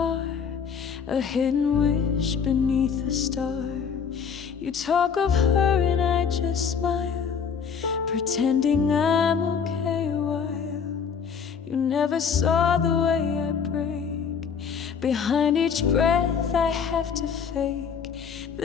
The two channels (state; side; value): quieter; right; 6.6 dB